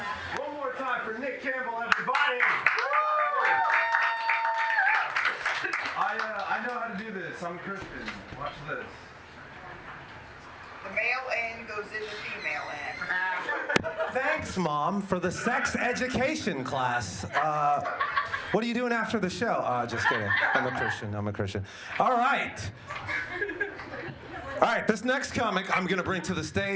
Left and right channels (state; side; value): identical; both; correlation 1.00